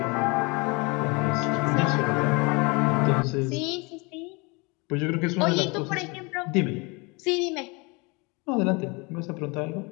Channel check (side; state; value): right; quieter; 28.2 dB